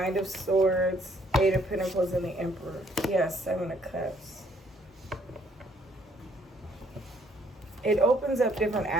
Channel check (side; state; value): both; normal; correlation 0.65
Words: of Swords, Eight of Pentacles, and the Emperor. Yes, Seven of Cups. It opens up different